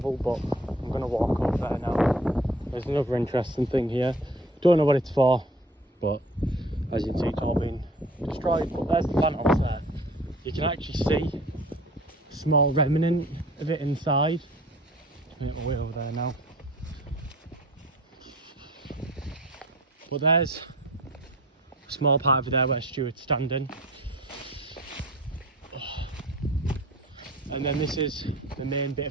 but I'm going to walk over there now. There's another interesting thing here. Don't know what it's for, but as you can see, it's all been destroyed. But there's the fan house there. You can actually see a small remnant of it inside. Make my way over there now. But there's a small part over there where Stuart's standing. And then this is the main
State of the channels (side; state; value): both; normal; correlation 0.46